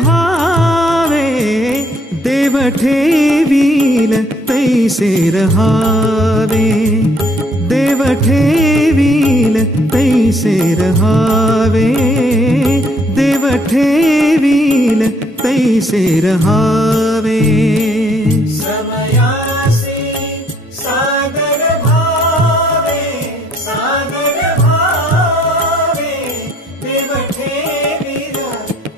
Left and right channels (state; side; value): normal; both; correlation 0.65